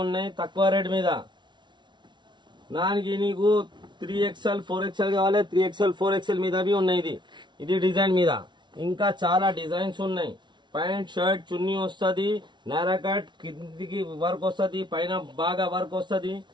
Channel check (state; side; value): late; left; 0.22 ms